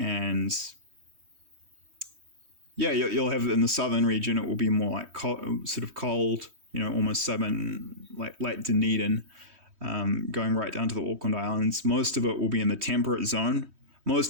yeah, you'll have in the southern region, it will be more like sort of cold, almost southern, like Lake Dunedin, going right down to the Auckland Islands. Most of it will be in the temperate zone.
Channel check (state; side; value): late; left; 3.2 ms